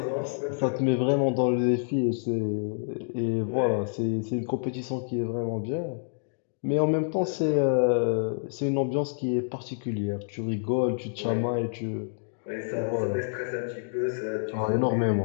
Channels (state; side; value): silent; right; digital silence